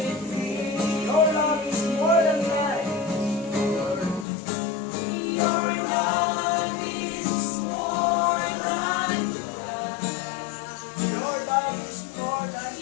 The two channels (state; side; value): drops out; right; at 4.2 s